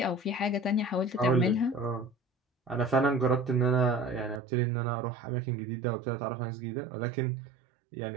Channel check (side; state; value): left; drops out; at 4.4 s